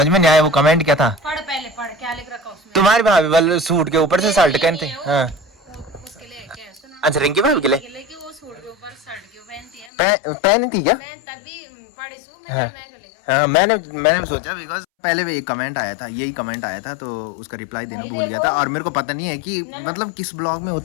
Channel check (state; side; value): drops out; right; at 9.9 s